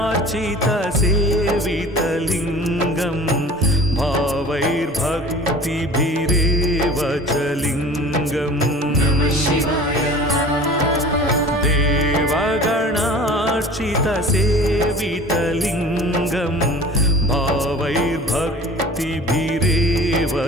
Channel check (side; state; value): both; normal; correlation 0.43